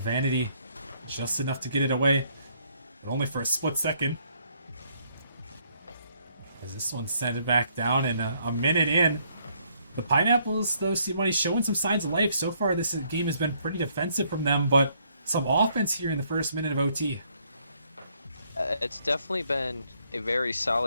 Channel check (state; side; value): inverted; both; correlation -0.69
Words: just enough to get it away, but only for a split second. As this one sent it back down, and a minute in. The Pineapples, though, see money showing some signs of life. So far, this game has been pretty defensive from them, but some offense here in the first minute of OT. It's definitely been a very